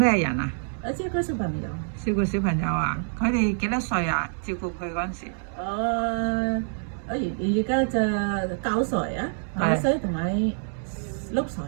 人啊？照顧小朋友。照顧小朋友啊？佢哋幾多歲啊？照顧佢嗰陣時。我而家就9歲啊，9歲同埋6歲。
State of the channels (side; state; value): left; silent; digital silence